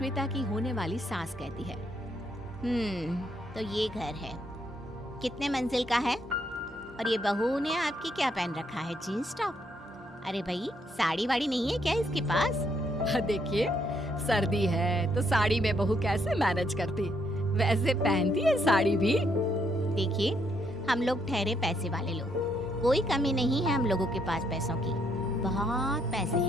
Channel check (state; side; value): normal; both; correlation 0.73